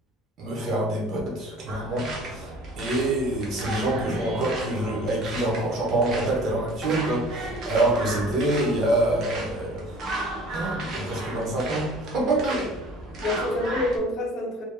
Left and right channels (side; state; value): both; normal; correlation 0.47